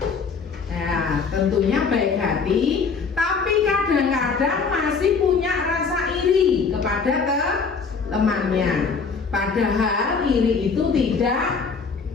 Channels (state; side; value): quieter; right; 5.2 dB